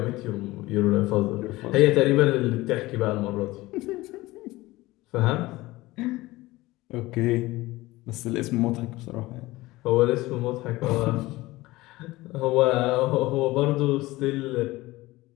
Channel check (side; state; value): right; quieter; 19.2 dB